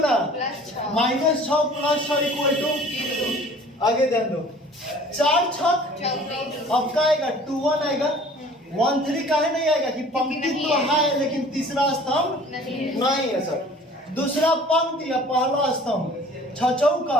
-6 + 6 इक्वल टू, आगे ध्यान दो 4 छक, अब का आएगा 2 1 आएगा, 1 3 काहे नहीं आएगा कि पंक्ति तो है लेकिन तीसरा स्तंभ नहीं है सर। दूसरा पंक्ति या पहला स्तंभ 6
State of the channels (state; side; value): normal; both; correlation 0.49